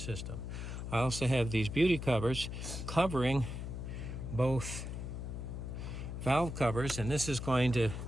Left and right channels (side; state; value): left; noise; hum, 6 dB below the sound